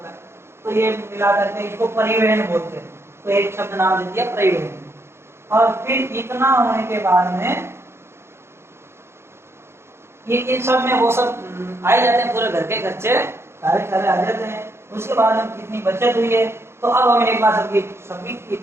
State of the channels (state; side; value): late; left; 0.12 ms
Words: है। तो ये मिला करके इसको परिवहन बोलते हैं। तो एक शब्द नाम दे दिया परिवहन। और फिर इतना होने के बाद में ये इन सब में वो सब आ जाते हैं, पूरे घर के खर्चे सारे आ जाते हैं। उसके बाद हम कितनी बचत हुई है, तो अब हम एक बार सभी की